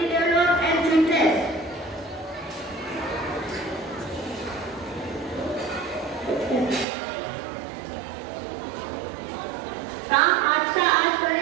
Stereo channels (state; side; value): drops out; left; at 6.9 s